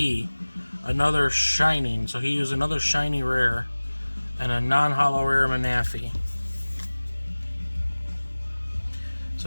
Another shining, so he used another shiny rare, and a non-holo rare Manaphy.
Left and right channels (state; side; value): inverted; both; correlation -1.00